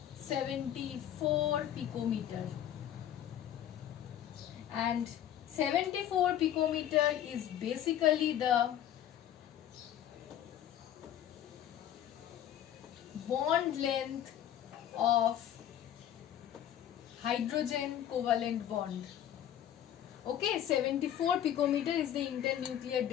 74 picometer. And 74 picometer is basically the bond length of hydrogen covalent bond. Okay, 74 picometer is the internuclear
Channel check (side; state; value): right; quieter; 10.8 dB